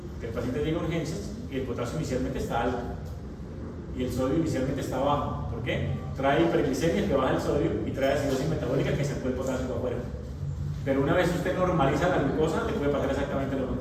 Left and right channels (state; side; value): identical; both; correlation 1.00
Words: que el paciente llega a urgencias y el potasio inicialmente está alto y el sodio inicialmente está bajo. ¿Por qué? Trae hiperglicemia que baja el sodio y trae acidosis metabólica que sacó el potasio para afuera. Pero una vez usted normaliza la glucosa, le puede pasar exactamente lo